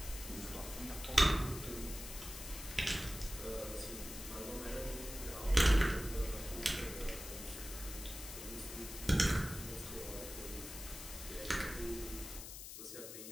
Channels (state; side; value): noise; left; hiss, 10 dB below the sound